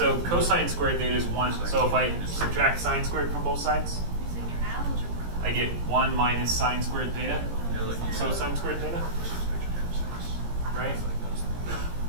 cosine squared theta is 1, so if I subtract sine squared from both sides, using your algebra. I get 1 minus sine squared theta, so sine squared theta, right?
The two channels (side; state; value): left; late; 17 ms